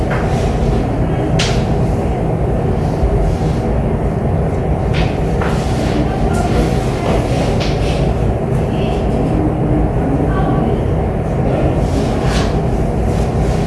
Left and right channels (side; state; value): both; identical; correlation 1.00